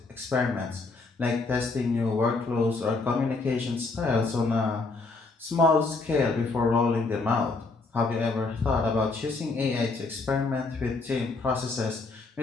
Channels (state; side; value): quieter; right; 3.8 dB